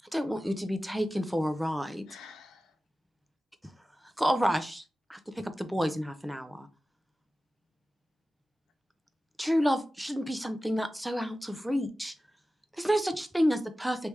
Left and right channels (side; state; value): both; normal; correlation 0.95